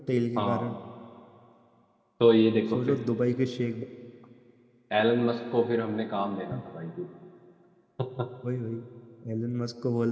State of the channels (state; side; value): identical; both; correlation 1.00